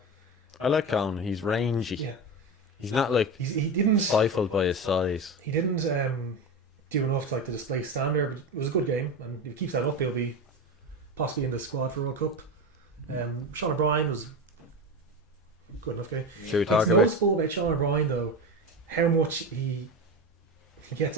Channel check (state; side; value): normal; both; correlation 0.21